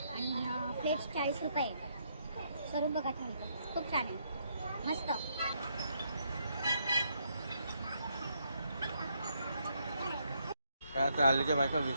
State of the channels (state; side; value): inverted; both; correlation -0.74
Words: आणि प्लेट 40 रुपये. स्वरूप बघा थालीचं खूप छान आहे, मस्त. काय आता हल्लीच्या बायका